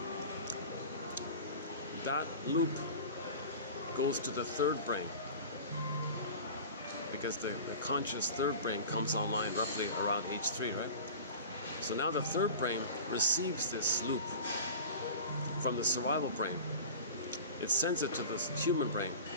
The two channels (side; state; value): both; inverted; correlation -0.36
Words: that loop goes to the third brain because the conscious third brain comes online roughly around age 3, right? So now the third brain receives this loop from the survival brain. It sends it to the human brain.